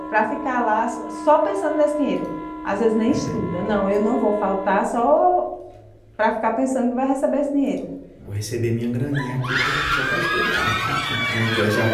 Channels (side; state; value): both; identical; correlation 1.00